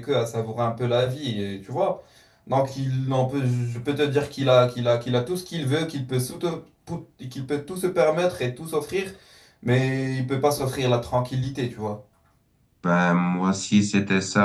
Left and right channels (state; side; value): identical; both; correlation 1.00